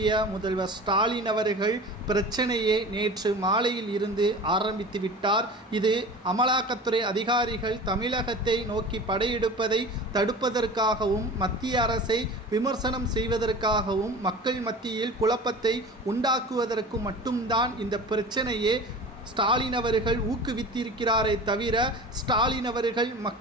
முதல்வர் ஸ்டாலின் அவர்கள் பிரச்சனையை நேற்று மாலையில் இருந்து ஆரம்பித்து விட்டார். இது அமலாக்கத்துறை அதிகாரிகள் தமிழகத்தை நோக்கி படையெடுப்பதை தடுப்பதற்காகவும் மத்திய அரசை விமர்சனம் செய்வதற்காகவும் மக்கள் மத்தியில் குழப்பத்தை உண்டாக்குவதற்கு மட்டும்தான் இந்த பிரச்சனையே ஸ்டாலின் அவர்கள் ஊக்குவித்திருக்கிறாரே தவிர ஸ்டாலின் அவர்கள்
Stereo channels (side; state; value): both; normal; correlation 0.37